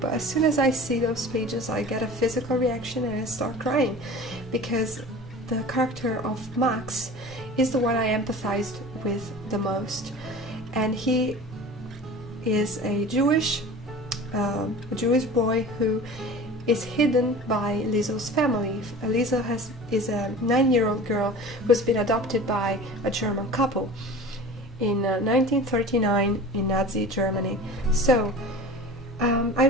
as soon as I see those pages I get a physical reaction and I start crying, because the character of Max is the one I empathized with the most, and he is a Jewish boy who is hidden by Lizo's family. Lizo is a 9-year-old girl who's been adopted by a German couple in 1939 in Nazi Germany. So I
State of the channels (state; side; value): normal; both; correlation 0.38